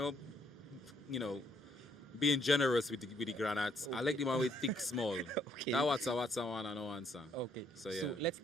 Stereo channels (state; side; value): normal; both; correlation 0.69